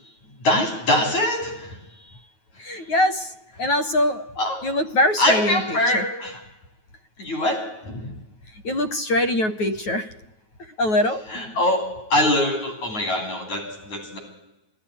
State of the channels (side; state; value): right; late; 9.3 ms